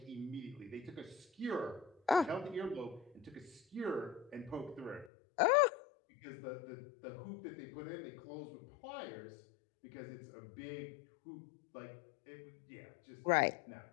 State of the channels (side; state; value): right; drops out; at 5.1 s